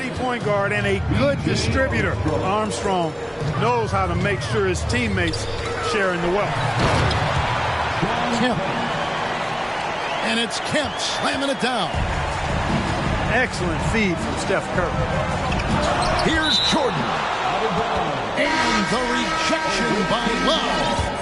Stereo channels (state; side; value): identical; both; correlation 1.00